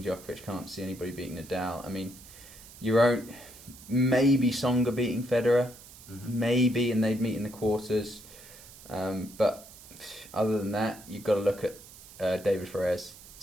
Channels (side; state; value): right; noise; hiss, 19 dB below the sound